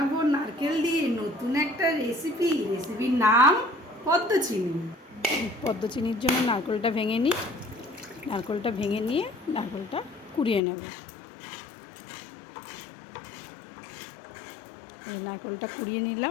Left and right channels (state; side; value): drops out; right; at 10.6 s